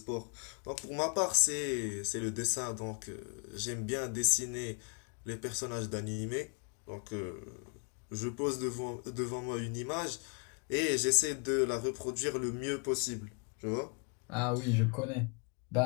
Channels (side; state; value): right; quieter; 37.6 dB